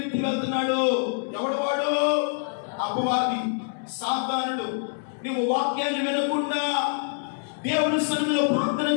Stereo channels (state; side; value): silent; right; 59 dB below the other